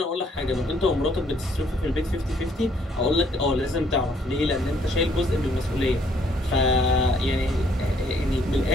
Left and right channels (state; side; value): normal; both; correlation 0.66